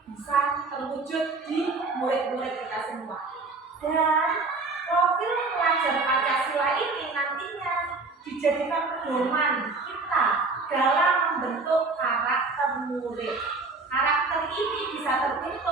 bisa terwujud di murid-murid kita semua. Dan profil pelajar Pancasila ini nantinya dijadikan pedoman kita dalam membentuk karakter murid. Karakter ini bisa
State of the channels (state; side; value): quieter; left; 3.8 dB